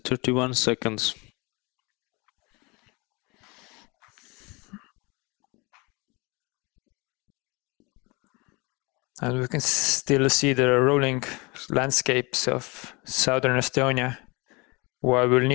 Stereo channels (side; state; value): right; quieter; 27.0 dB